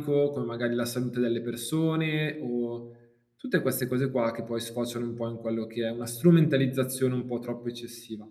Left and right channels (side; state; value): both; identical; correlation 1.00